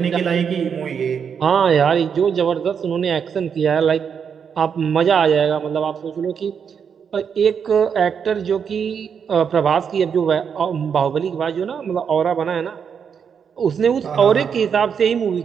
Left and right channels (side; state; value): left; quieter; 7.0 dB